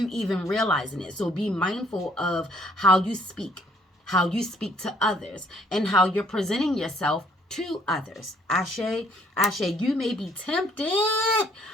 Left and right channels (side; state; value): both; normal; correlation 0.64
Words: even realizing it. So be mindful of how you speak to others, and how you're presenting yourself to others. Ashe, ashe, you may be tempted,